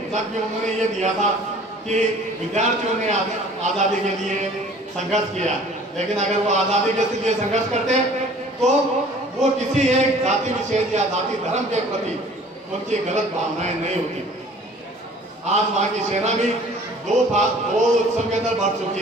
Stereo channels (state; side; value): normal; both; correlation 0.50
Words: जबकि उन्होंने ये दिया था कि विद्यार्थियों ने आज़ादी के लिए संघर्ष किया, लेकिन अगर वो आज़ादी के लिए संघर्ष करते तो वो किसी एक जाति विशेष या जाति धर्म के प्रति उनकी गलत भावनाएं नहीं होती। आज वहाँ की सेना भी दो उत्सव के अंदर बढ़